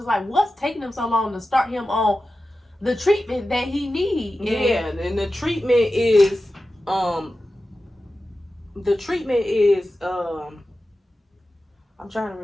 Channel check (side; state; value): both; normal; correlation 0.93